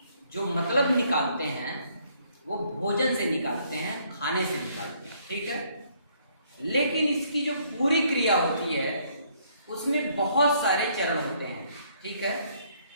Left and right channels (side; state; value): both; inverted; correlation -0.67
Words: जो मतलब निकालते हैं वो भोजन से निकालते हैं, खाने से निकालते हैं, ठीक है। लेकिन इसकी जो पूरी क्रिया होती है उसमें बहुत सारे चरण होते हैं, ठीक है।